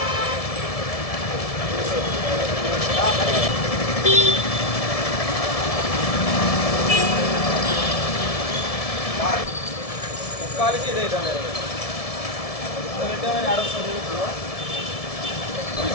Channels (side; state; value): right; late; 1.7 ms